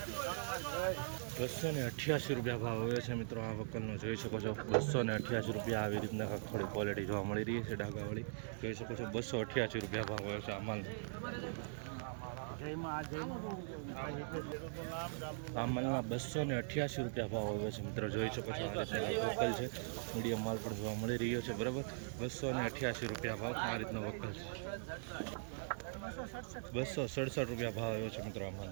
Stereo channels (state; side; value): silent; left; digital silence